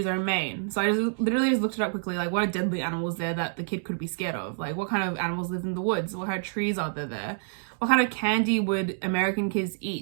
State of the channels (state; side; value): silent; left; digital silence